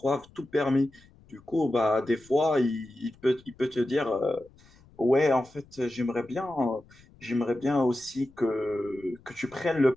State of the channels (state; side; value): noise; left; rumble, 27 dB below the sound